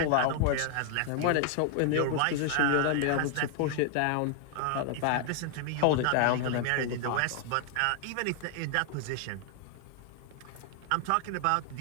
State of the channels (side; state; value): both; different; correlation 0.00